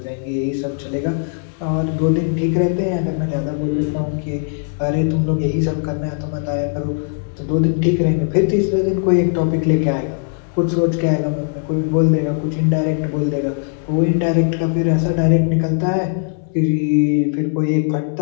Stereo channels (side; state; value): right; silent; digital silence